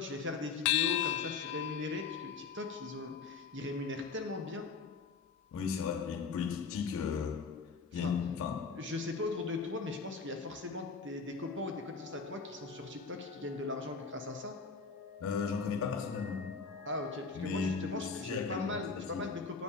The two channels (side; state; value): right; quieter; 5.2 dB